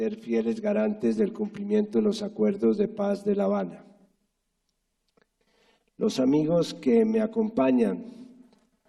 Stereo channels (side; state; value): both; identical; correlation 1.00